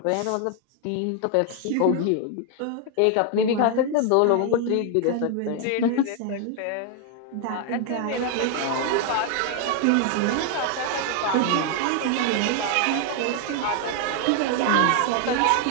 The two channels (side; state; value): both; different; correlation 0.00